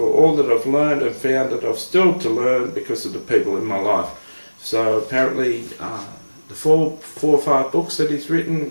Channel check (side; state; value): both; inverted; correlation -1.00